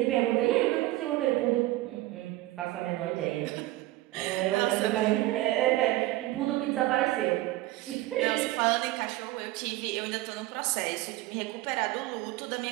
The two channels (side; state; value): left; quieter; 17.4 dB